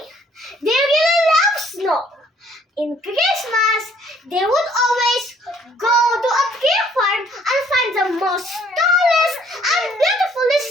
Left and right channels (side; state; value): both; normal; correlation 0.62